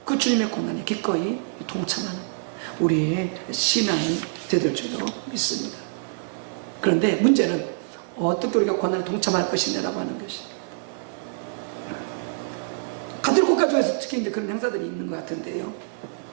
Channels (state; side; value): silent; left; digital silence